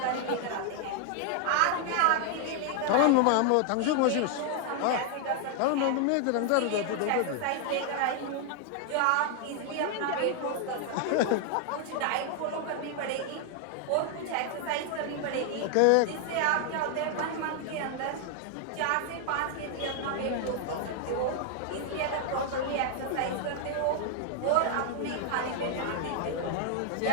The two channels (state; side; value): different; both; correlation 0.00